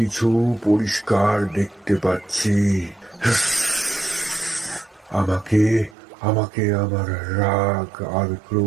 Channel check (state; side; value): drops out; left; at 6.0 s